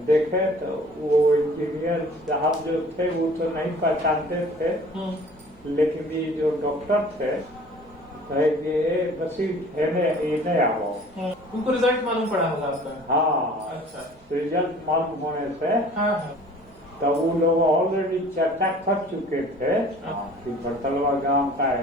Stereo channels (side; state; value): both; normal; correlation 0.48